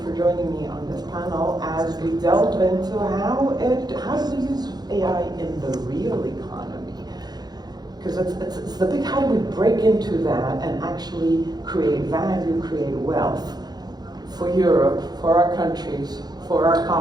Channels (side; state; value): left; late; 0.19 ms